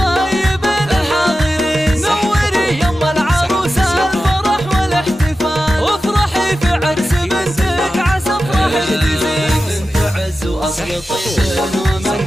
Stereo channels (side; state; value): both; normal; correlation 0.93